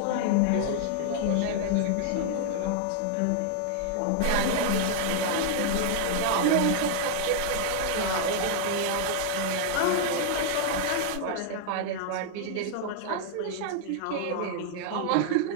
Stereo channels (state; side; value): different; both; correlation 0.00